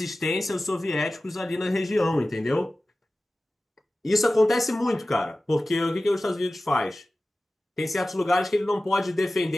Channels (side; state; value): both; normal; correlation 0.96